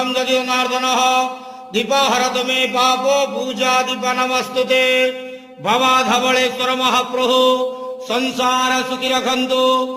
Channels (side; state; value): both; identical; correlation 1.00